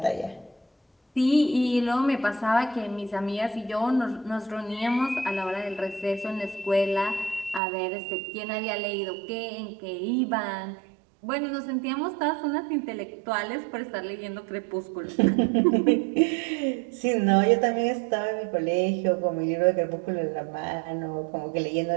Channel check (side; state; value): left; drops out; at 7.6 s